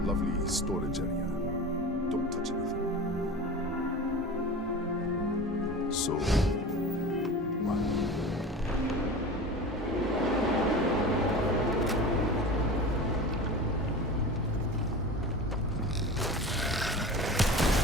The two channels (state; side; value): normal; both; correlation 0.33